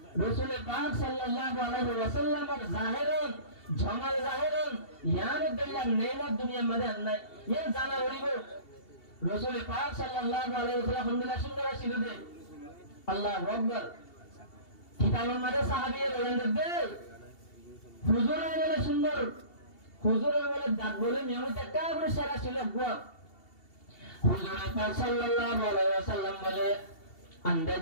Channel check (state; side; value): late; right; 2.7 ms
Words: রাসূল পাক সাল্লাল্লাহু আলাইহি ওয়াসাল্লামের জাহিরন জামাল জাহিরন ইয়ার দিল্লাহ নেমত দুনিয়ার মধ্যে নাই ইয়া জানা করিব রাসূল পাক সাল্লাল্লাহু আলাইহি ওয়াসাল্লাম আলহামদুলিল্লাহ সুন্দর ছিল দে আল্লাহু আকবার কিতাবের মধ্যে সাহাবীরা বলেন দে হুজুরের বলে সুন্দর হুজুরের বলে দাঁত বলে নিয়মিত একটা করে সেরা ছিল হুজুর পাক সাল্লাল্লাহু আলাইহি ওয়াসাল্লাম বলে আন্দাজ